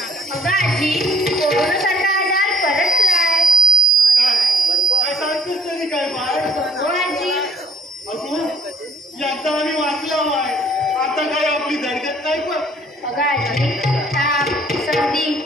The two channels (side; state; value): both; normal; correlation 0.60